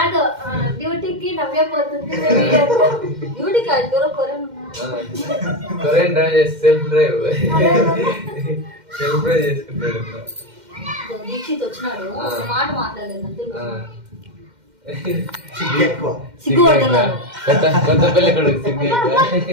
డ్యూటీకి నవ్వే పోతుంది. డ్యూటీ కాదు, కొరియన్ డ్రైవ్ చేసి సెల్ఫ్ డ్రైవ్ చేసుకుంటాడు. దీక్షిత్ వచ్చినాడు, ఒక మాట మాట్లాడలేదు. సిగ్గుపడుతున్నారు. కొత్త పెళ్లి కొడుకు సిగ్గు.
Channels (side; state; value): left; late; 2.1 ms